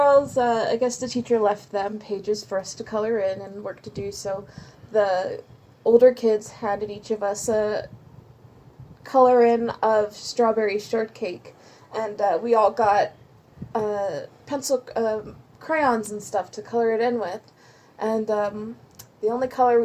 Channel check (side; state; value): both; identical; correlation 1.00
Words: I guess the teacher left them pages for us to color in and work to do, so the older kids handed each of us a color in of strawberry shortcake, and we all got pencil crayons and stuff to color it in with, and the only color